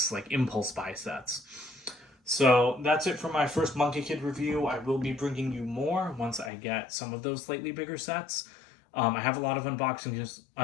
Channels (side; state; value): right; drops out; at 6.5 s